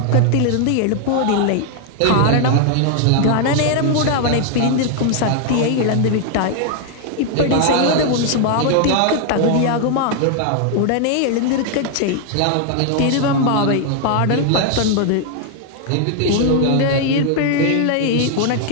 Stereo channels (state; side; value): different; both; correlation 0.00